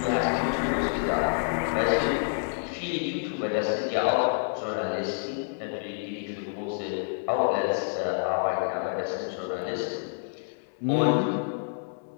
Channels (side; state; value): right; silent; 59 dB below the other